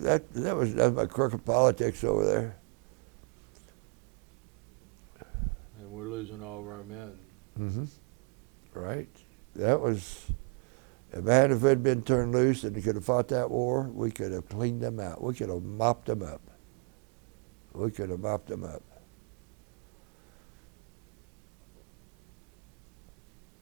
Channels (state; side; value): quieter; left; 37.5 dB